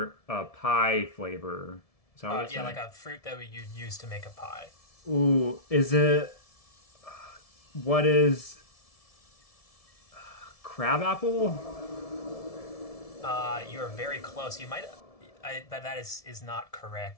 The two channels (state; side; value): late; right; 1.7 ms